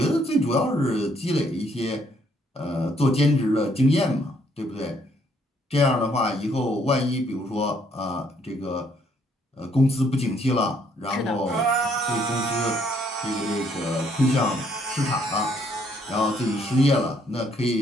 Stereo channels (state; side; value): normal; both; correlation 0.68